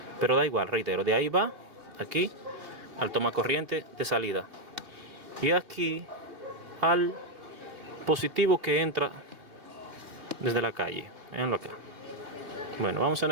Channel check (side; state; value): left; late; 3.0 ms